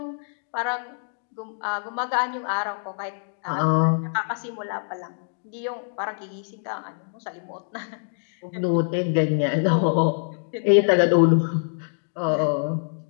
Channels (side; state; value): right; silent; digital silence